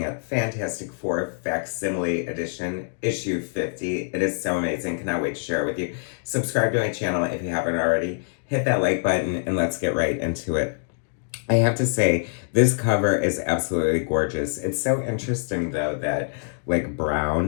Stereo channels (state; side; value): silent; right; digital silence